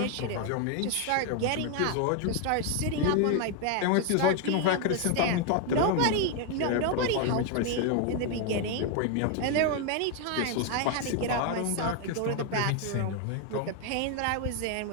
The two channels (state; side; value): different; both; correlation 0.01